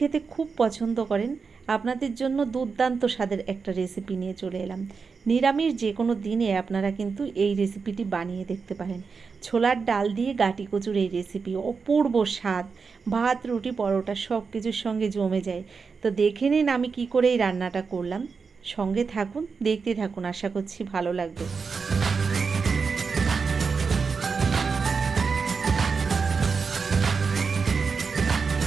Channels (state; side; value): quieter; left; 5.2 dB